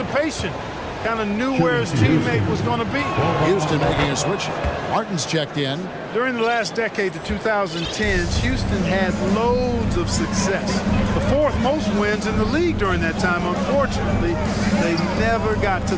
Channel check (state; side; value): identical; both; correlation 1.00